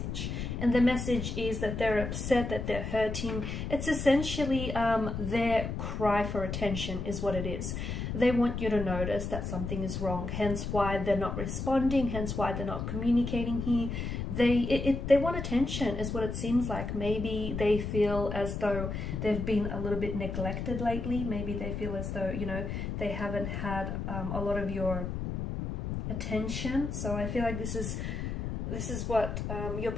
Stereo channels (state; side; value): noise; left; rumble, 4 dB below the sound